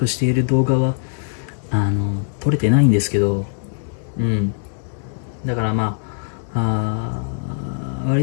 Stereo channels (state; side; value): silent; right; digital silence